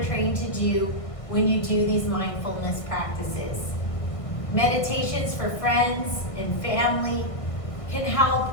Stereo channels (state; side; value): late; right; 1.6 ms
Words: trained to do when you do these mindfulness practices. Meditations for friends and family can help